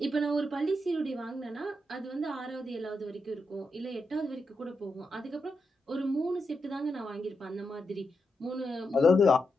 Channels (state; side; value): normal; both; correlation 0.85